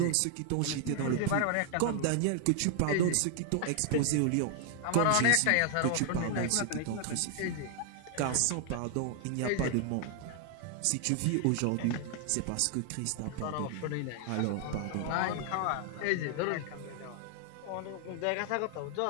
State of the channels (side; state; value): both; different; correlation 0.00